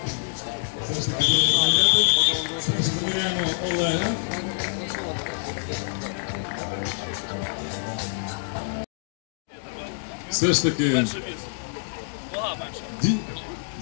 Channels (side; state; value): right; silent; digital silence